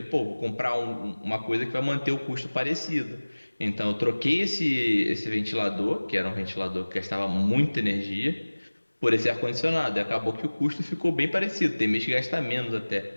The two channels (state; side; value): inverted; both; correlation -1.00